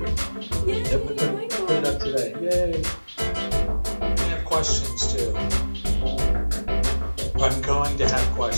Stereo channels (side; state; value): both; inverted; correlation -1.00